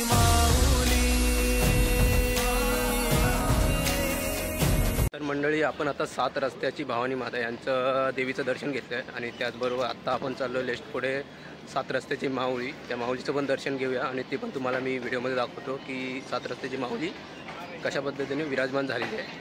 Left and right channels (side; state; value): both; identical; correlation 1.00